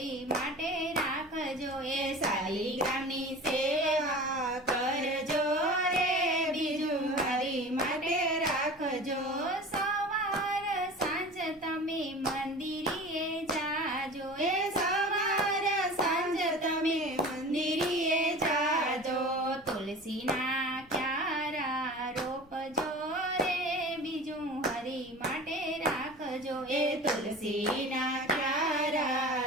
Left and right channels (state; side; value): noise; left; rumble, 28 dB below the sound